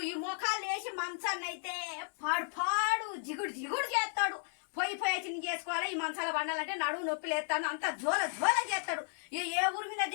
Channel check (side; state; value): right; silent; 55 dB below the other